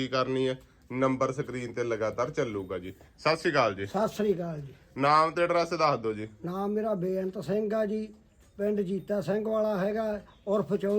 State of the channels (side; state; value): both; identical; correlation 1.00